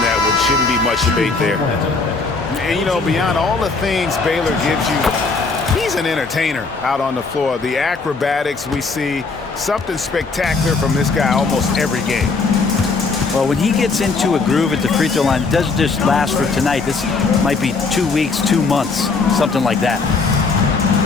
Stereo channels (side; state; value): right; quieter; 4.2 dB